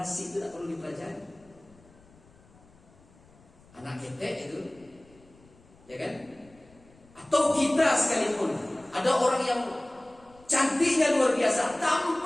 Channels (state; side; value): noise; left; rumble, 27 dB below the sound